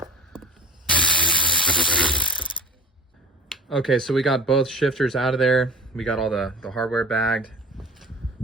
Okay, so we got both shifters out of there. We got all the hardware bagged.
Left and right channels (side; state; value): both; normal; correlation 0.38